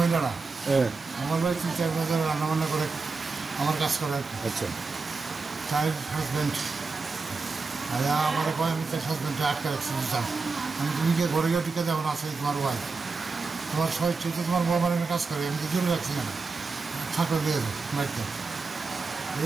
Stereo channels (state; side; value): quieter; left; 4.2 dB